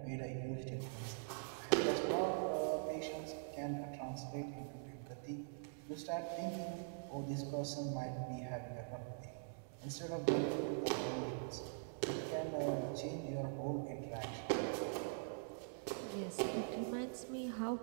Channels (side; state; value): left; silent; digital silence